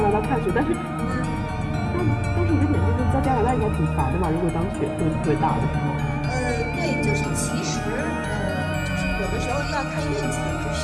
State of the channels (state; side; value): identical; both; correlation 1.00